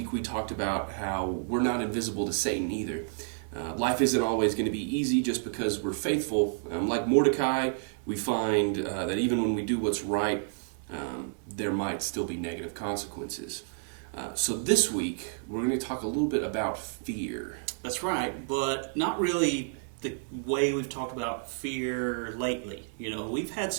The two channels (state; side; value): silent; left; 56 dB below the other